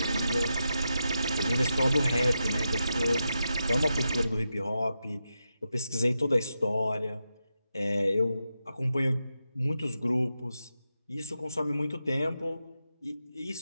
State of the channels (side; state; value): both; inverted; correlation -0.88